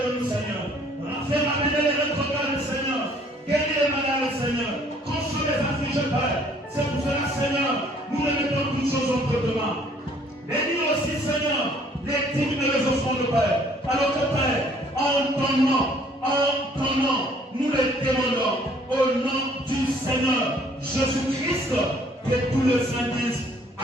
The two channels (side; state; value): both; normal; correlation 0.60